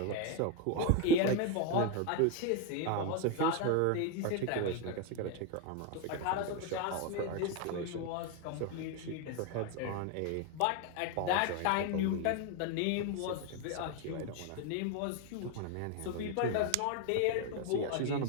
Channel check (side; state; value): both; different; correlation 0.02